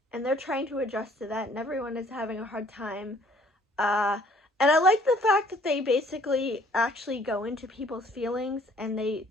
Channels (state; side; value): normal; both; correlation 0.59